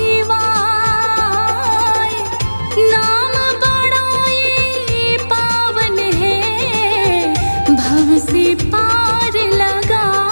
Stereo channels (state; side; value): inverted; both; correlation -1.00